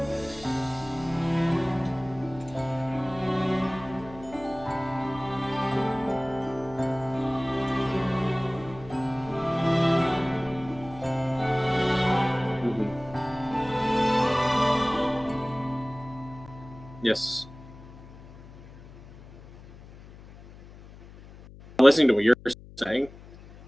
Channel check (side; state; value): left; noise; hum, 19 dB below the sound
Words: Yes. I'm listening to what you're saying.